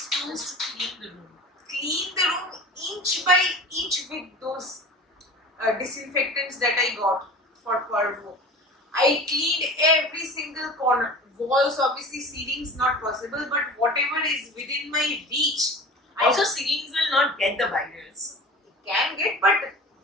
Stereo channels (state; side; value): normal; both; correlation 0.37